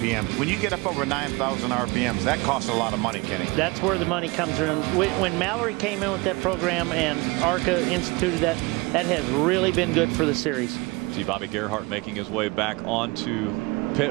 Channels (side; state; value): left; quieter; 25.1 dB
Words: When you get up over 9,000 RPMs, that costs a lot of money, Kenny. That's where the money comes in. When Mallory came in with that program and ARCA instituted that, that has really been good for the series. See Bobby Gerhart making his way back onto